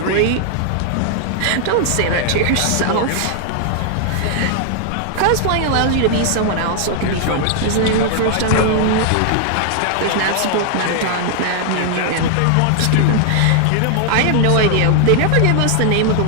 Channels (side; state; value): both; different; correlation 0.00